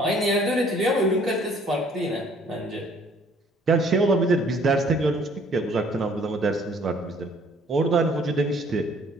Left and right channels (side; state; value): both; normal; correlation 0.59